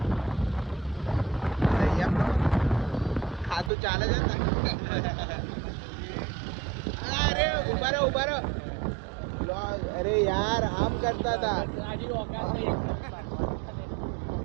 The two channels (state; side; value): drops out; left; at 3.7 s